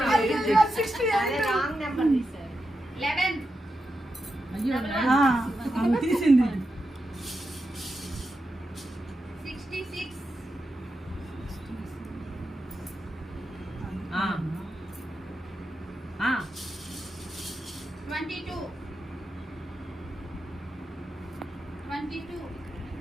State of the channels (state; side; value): normal; both; correlation 0.88